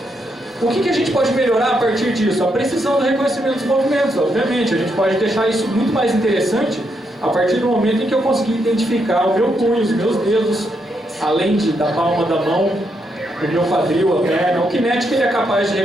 O que a gente pode melhorar a partir disso? A precisão do reconhecimento dos movimentos, obviamente. A gente pode deixar isso muito mais interessante a partir do momento em que eu conseguir identificar o meu punho, os meus dedos, além da palma da mão, o meu quadril, a perna. O Kinetic ele é capaz de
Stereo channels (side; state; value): both; normal; correlation 0.79